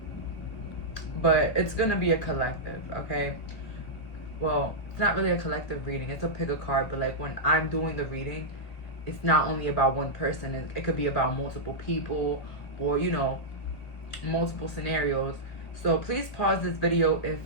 but it's gonna be a collective. Okay, well, it's not really a collective reading, it's a pick a card, but like when I'm doing the reading, it's not only about one person, it could be about multiple people, or you know, multiple scenarios. So please pause this video if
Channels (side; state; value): right; late; 2.3 ms